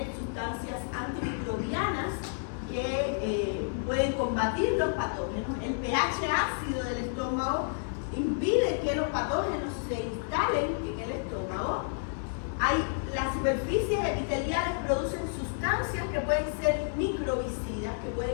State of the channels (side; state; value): right; silent; digital silence